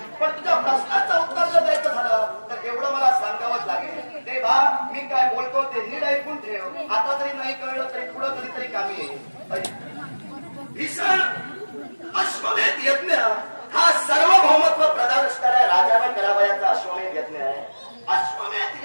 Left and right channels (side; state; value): both; inverted; correlation -1.00